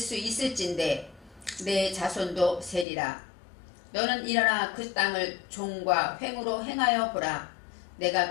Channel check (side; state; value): right; drops out; at 2.9 s